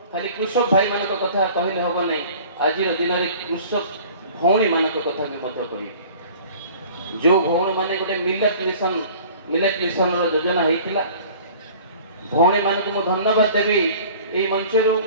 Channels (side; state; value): both; inverted; correlation -0.46